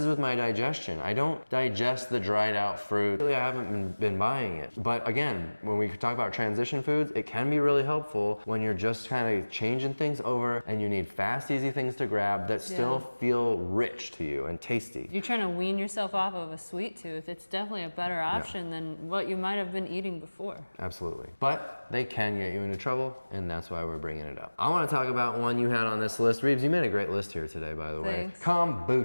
with my digestion. I don't digest the dried out fruit. Really, I haven't been buying it. But again, when we talk about transition foods, it can be really helpful when you're just kind of changing things over, and you need fast, easy things to grab that still feel rich to you and tasty. You're trying to wean yourself off of a sweet tooth. It's definitely a better option than what you might have been eating before. Absolutely. But they can get you into trouble, and that's why we're bringing it up. I want to talk about one you had on this list. Reeves, you made a great list here today, by the way. Thanks.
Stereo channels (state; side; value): inverted; both; correlation -1.00